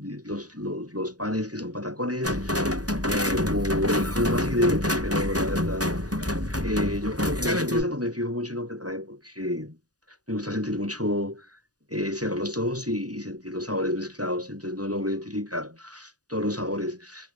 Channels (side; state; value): left; late; 0.68 ms